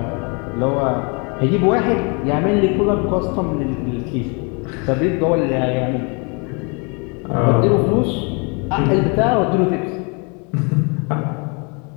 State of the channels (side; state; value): right; quieter; 33.0 dB